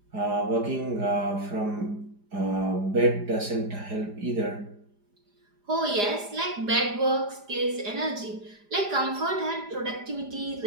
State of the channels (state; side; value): late; left; 4.9 ms